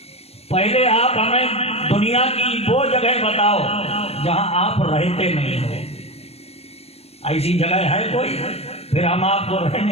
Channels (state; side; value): late; right; 0.30 ms